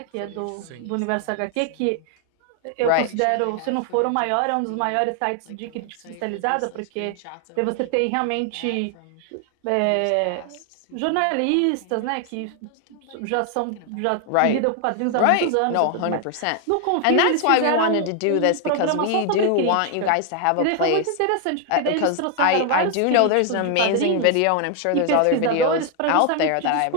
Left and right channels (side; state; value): both; different; correlation 0.00